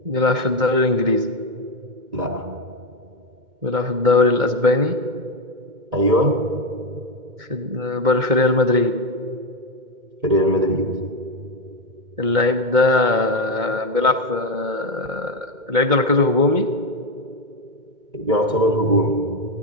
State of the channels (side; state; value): left; late; 2.2 ms